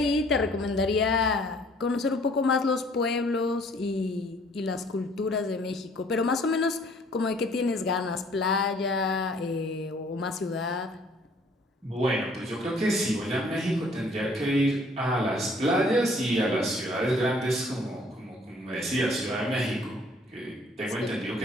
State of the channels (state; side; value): normal; both; correlation 0.58